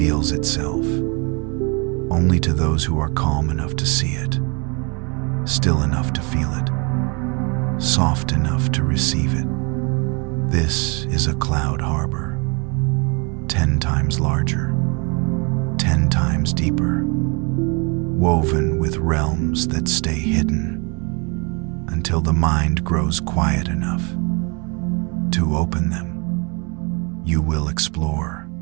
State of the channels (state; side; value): quieter; left; 32.1 dB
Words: itself only to those who are calm enough to see it, still enough to feel it, soft enough to receive it. This is a Cloud Harbor, 10 times larger, 10 times deeper, woven with realms that stay hidden until the mind grows quiet enough to open them. You will explore